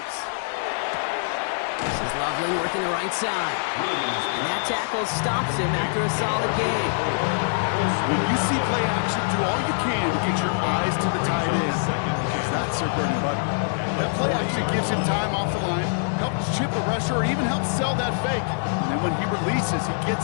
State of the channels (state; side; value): silent; right; digital silence